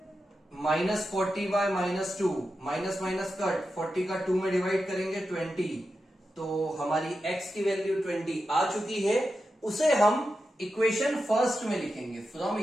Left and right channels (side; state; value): both; normal; correlation 0.90